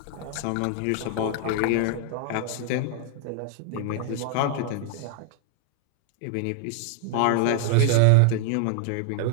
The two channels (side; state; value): both; different; correlation 0.00